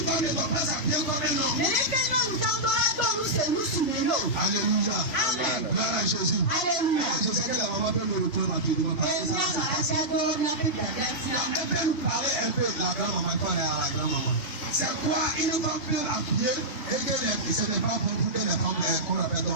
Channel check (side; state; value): right; late; 2.8 ms